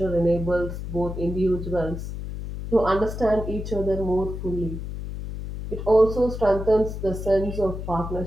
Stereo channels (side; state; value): left; noise; hum, 7 dB below the sound